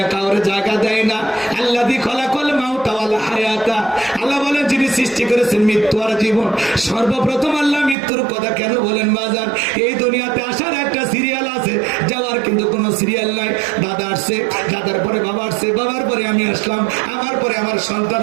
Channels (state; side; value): drops out; left; at 8.0 s